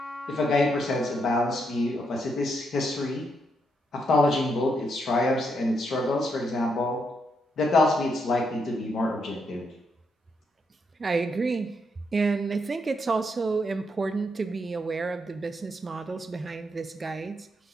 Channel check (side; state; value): both; normal; correlation 0.79